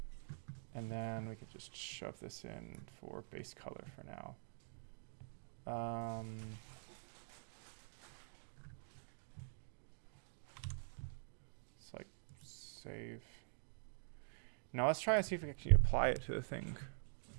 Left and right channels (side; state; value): left; silent; digital silence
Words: And then we could just shove this in for base color for now. It's like save. Now let's try and see if we can actually apply it to the thing.